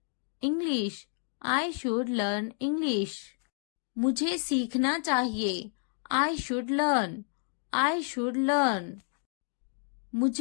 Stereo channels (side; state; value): right; silent; 58 dB below the other